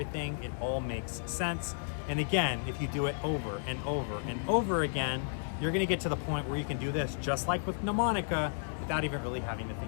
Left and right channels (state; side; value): silent; right; 56 dB below the other